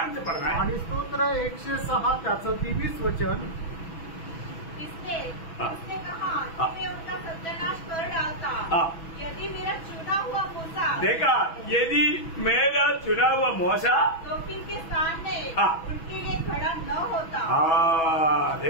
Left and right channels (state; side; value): late; right; 6.1 ms